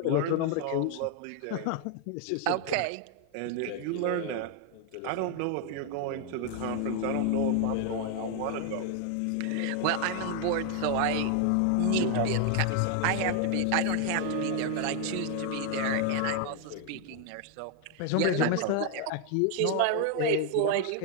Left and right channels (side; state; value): both; different; correlation 0.00